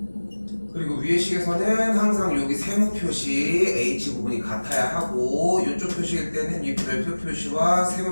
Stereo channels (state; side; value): inverted; both; correlation -1.00